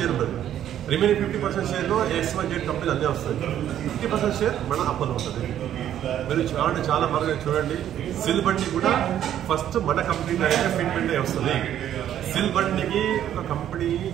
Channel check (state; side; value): quieter; left; 10.9 dB